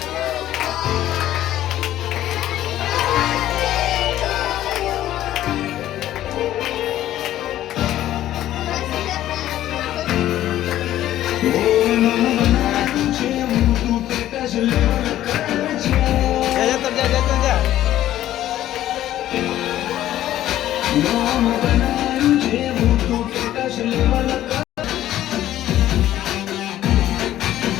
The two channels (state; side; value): quieter; right; 13.1 dB